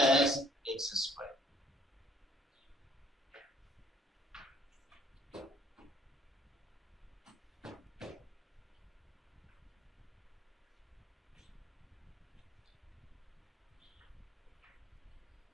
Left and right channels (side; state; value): both; normal; correlation 0.60